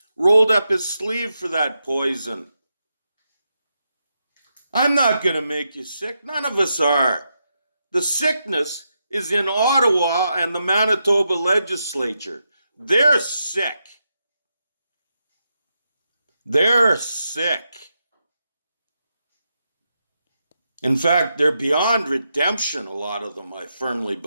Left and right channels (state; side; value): inverted; both; correlation -0.85